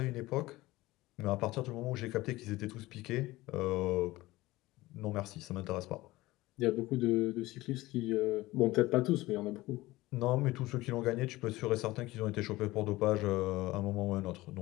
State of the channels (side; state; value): right; quieter; 18.8 dB